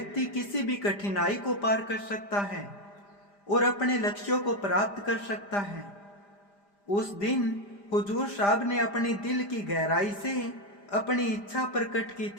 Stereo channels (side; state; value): right; late; 5.0 ms